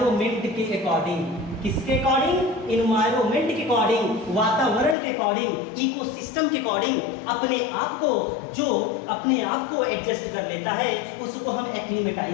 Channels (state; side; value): drops out; right; at 5.0 s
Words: के अकॉर्डिंग। किसके अकॉर्डिंग? इन्वायरमेंट के अकॉर्डिंग, वातावरण के अकॉर्डिंग, इकोसिस्टम के अकॉर्डिंग अपने आप को, जो अपने आप को एडजस्ट कर लेता है उसको हम